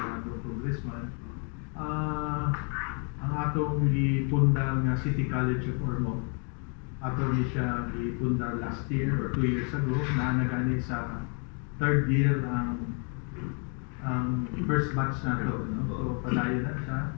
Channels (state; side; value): quieter; right; 37.7 dB